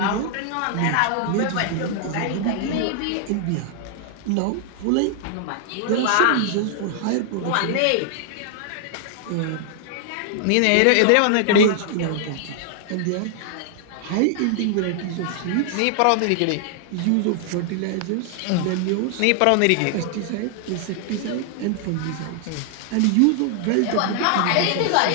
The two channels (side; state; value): both; different; correlation 0.00